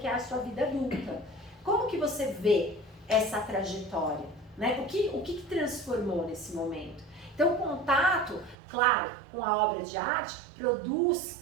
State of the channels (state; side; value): drops out; left; at 8.6 s